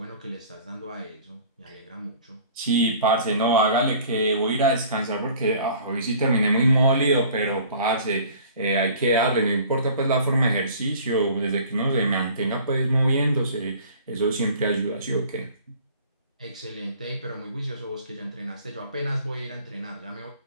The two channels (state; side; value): inverted; both; correlation -0.49